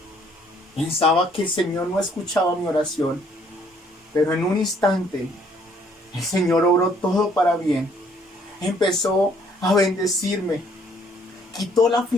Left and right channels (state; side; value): normal; both; correlation 0.64